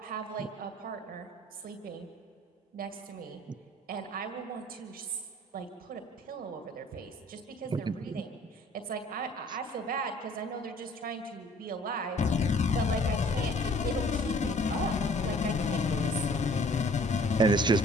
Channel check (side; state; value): both; normal; correlation 0.54